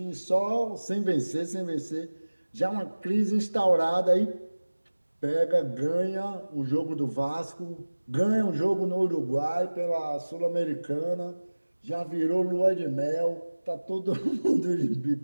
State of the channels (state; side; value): inverted; both; correlation -1.00